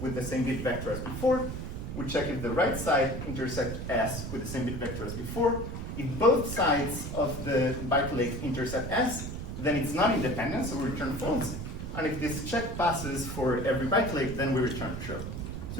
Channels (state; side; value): noise; right; rumble, 6 dB below the sound